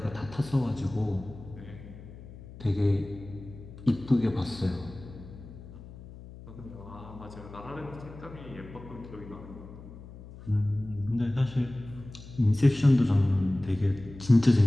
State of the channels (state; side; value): noise; left; hum, 16 dB below the sound